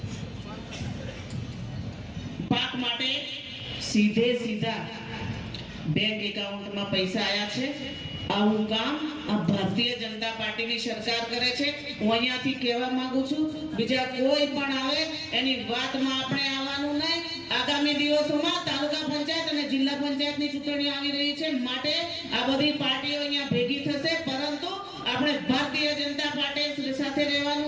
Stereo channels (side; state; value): both; identical; correlation 1.00